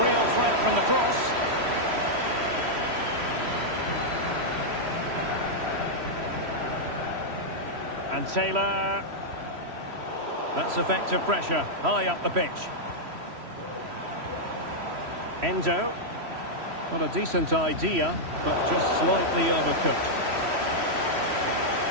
real threat from the cross. And Taylor. That's effective pressure, high up the pitch. Endo. Not a decent idea, but just slightly overcooked.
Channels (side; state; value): left; late; 3.1 ms